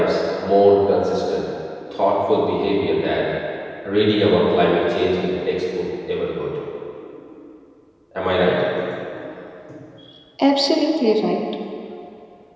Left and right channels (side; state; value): both; identical; correlation 1.00